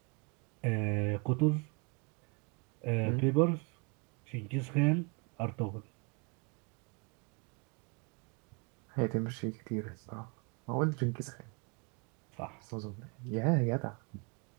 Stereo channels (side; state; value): left; quieter; 32.6 dB